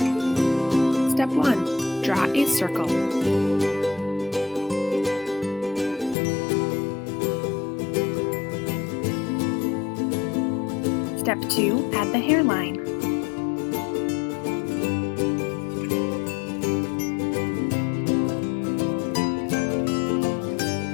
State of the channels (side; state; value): right; drops out; at 6.2 s